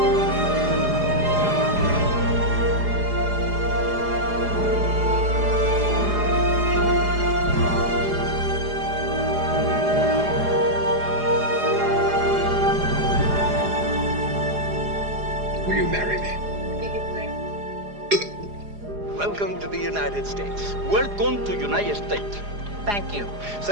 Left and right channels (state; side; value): late; left; 4.9 ms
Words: Will you marry me? Welcome to the United States. Welcome to United States. Thank you.